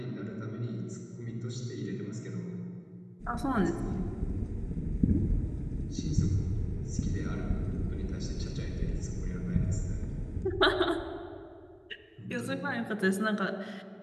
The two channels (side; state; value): both; identical; correlation 1.00